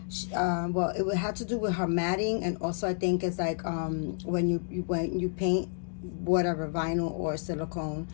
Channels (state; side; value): silent; right; digital silence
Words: well, it had to do with her matting, and also I think it's like when you paint whatever, vinyl or silicone,